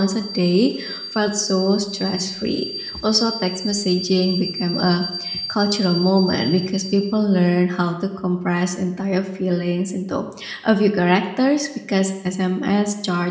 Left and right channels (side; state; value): both; identical; correlation 1.00